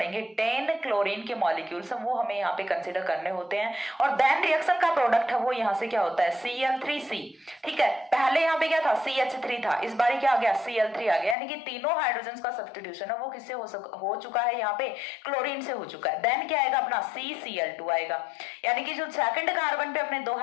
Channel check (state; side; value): drops out; right; at 11.4 s